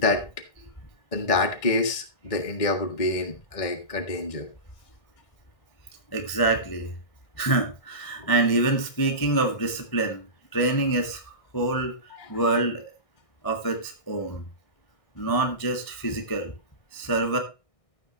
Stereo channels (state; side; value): late; right; 1.6 ms